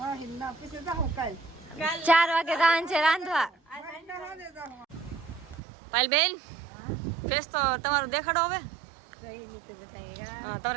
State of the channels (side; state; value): left; drops out; at 5.6 s